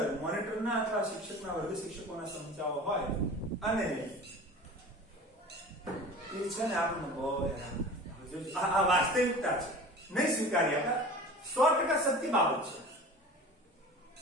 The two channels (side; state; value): both; normal; correlation 0.38